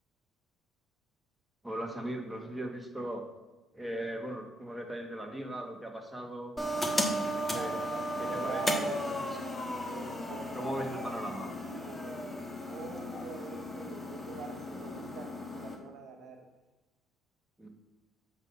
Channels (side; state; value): both; normal; correlation 0.78